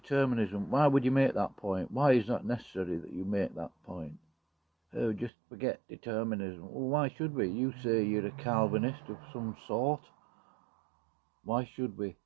Why would you make that point? Why is that necessary that you make that point? Oh, just forget determinism. Well, why should we? You say you're a Calvinist of some sort. Why should we?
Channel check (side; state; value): left; drops out; at 5.3 s